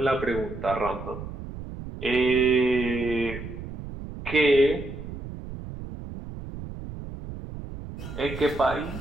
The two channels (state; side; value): noise; right; rumble, 10 dB below the sound